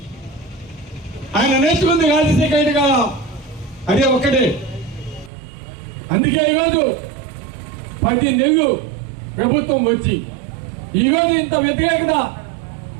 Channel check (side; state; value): left; drops out; at 5.3 s